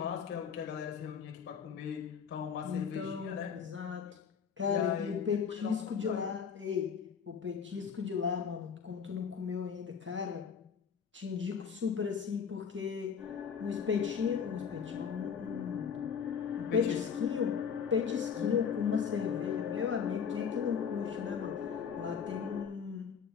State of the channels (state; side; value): quieter; right; 6.8 dB